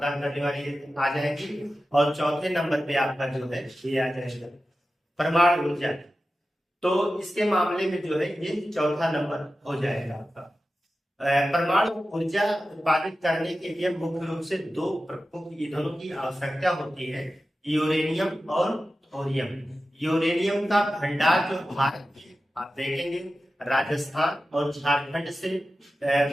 करने वाली आ जाएगी, और चौथे नंबर पे आपका जो है ये आ जाएगा परमाणु ऊर्जा। तो इसके मामले में जो है ये चौथा नंबर हो जाएगा आपका। परमाणु ऊर्जा उत्पादित करने के लिए मुख्य रूप से 2 प्रमुख ईंधनों की आवश्यकता होती है, यूरेनियम और थोरियम। यूरेनियम का भंडार जो भारत में आप देखेंगे राजस्थान और झारखंड से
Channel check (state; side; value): normal; both; correlation 0.94